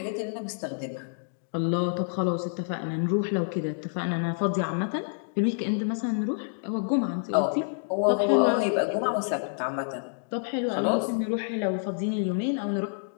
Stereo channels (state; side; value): silent; right; digital silence